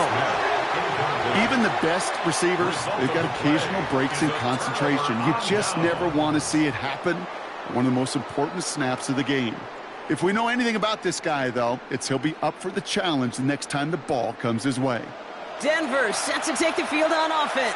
Even the best receivers, they've got occasional breaks in concentration. You just never want to see it happen. One of the most important snaps of the game. If we know anything about this guy, though, it's he'll be up for the challenge the next time the ball comes his way. Denver set to take the field on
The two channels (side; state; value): both; identical; correlation 1.00